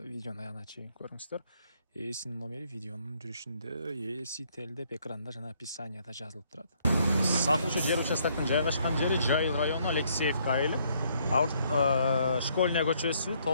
Видеону аягына чейин көрүңүздөр. Ээсинин номери видеонун жүрүшүндө, ээси телдеп экранда жана описанияда жазылып турат. Сатылуучу жер участоктун жайгашкан жери Жайыл району Алексеевка айылы. Школьная көчөсү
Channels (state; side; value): inverted; both; correlation -0.68